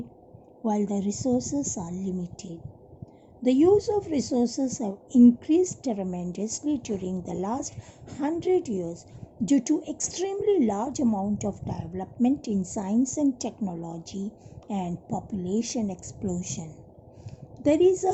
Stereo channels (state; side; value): identical; both; correlation 1.00